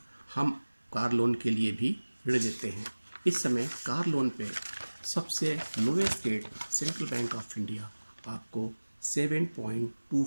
हम कार लोन के लिए भी ऋण लेते हैं। इस समय कार लोन पे सबसे lowest rate central bank of India आपको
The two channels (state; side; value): inverted; both; correlation -1.00